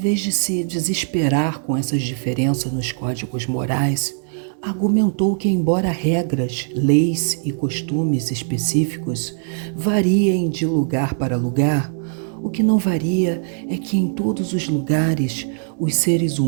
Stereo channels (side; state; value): left; silent; digital silence